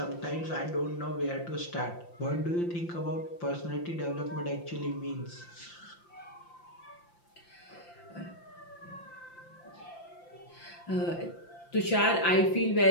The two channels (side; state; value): right; late; 5.8 ms